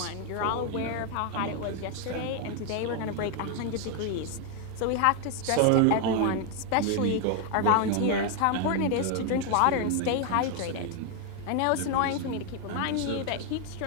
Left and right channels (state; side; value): different; both; correlation 0.01